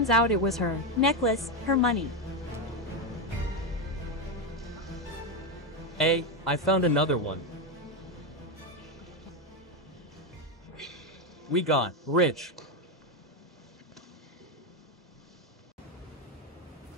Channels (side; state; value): both; normal; correlation 0.09